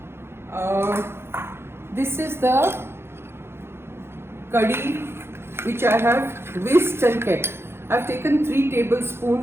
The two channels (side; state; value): left; late; 0.12 ms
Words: this is the curry which I have whisked and kept. I've taken 3